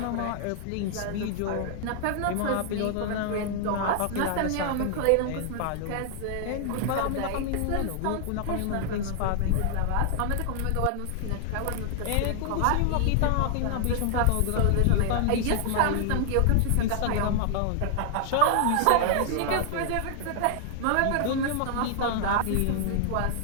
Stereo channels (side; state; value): both; different; correlation 0.00